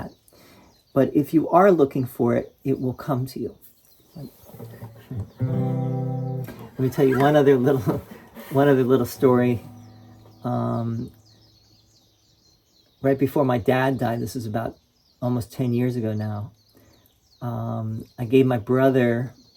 but if you are looking for it, it will come to you. Let me tell you one other little story. Right before my dad died, this is about almost 10 years ago now, I gave my brother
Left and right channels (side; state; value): both; identical; correlation 1.00